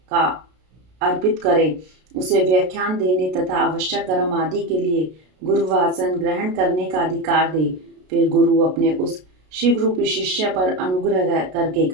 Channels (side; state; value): left; late; 33 ms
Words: का अर्पित करे। उसे व्याख्यान देने तथा आवश्यक कर्म आदि के लिए गुरुवासन ग्रहण करने का अधिकार दे। फिर गुरु अपने उस शिव रूपी शिष्य पर अनुग्रह करके